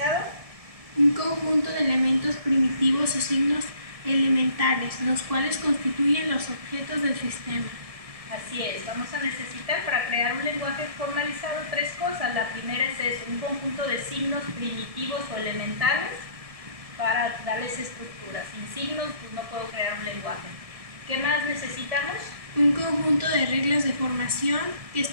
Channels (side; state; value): left; late; 1.7 ms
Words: Un conjunto de elementos primitivos o signos elementales, los cuales constituyen los objetos del sistema. Así es, vamos a necesitar para crear un lenguaje formalizado tres cosas. La primera es eso, un conjunto de signos primitivos o elementales para darles estructura. Sin signos pues no puedo crear un lenguaje. ¿Qué más necesitamos? Un conjunto de reglas de formación que